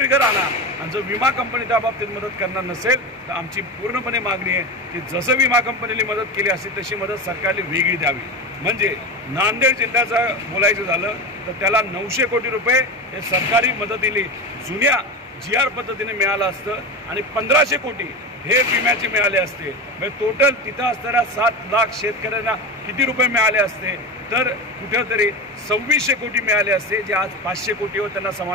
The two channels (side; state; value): both; normal; correlation 0.22